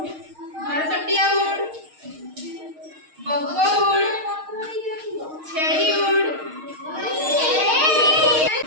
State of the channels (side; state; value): left; late; 6.5 ms